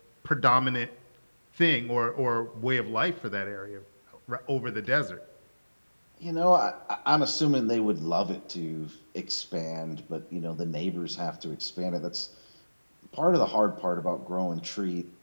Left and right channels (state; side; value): inverted; both; correlation -1.00